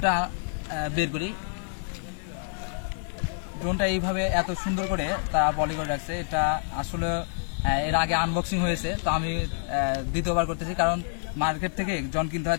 বের করি। ড্রোনটা এইভাবে এত সুন্দর করে তারা পলি করে রাখছে। এটা আসলে এর আগে আনবক্সিং হয়েছে, তো আমি দ্বিতীয়বার করতেছি, কারণ মার্কেট থেকে যখন কিনতে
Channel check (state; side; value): silent; right; 60 dB below the other